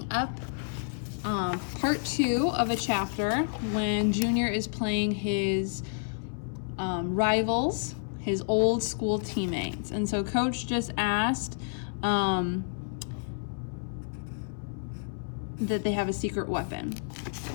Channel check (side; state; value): right; silent; 58 dB below the other